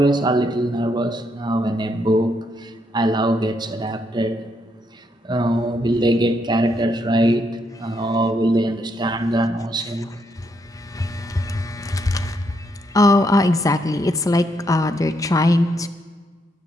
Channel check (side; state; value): both; normal; correlation 0.76